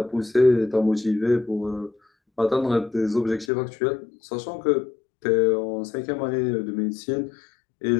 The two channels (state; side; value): drops out; right; at 3.5 s